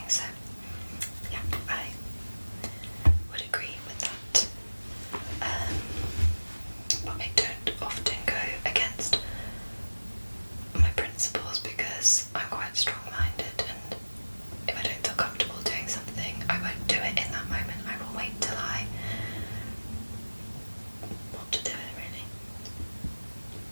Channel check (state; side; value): inverted; both; correlation -1.00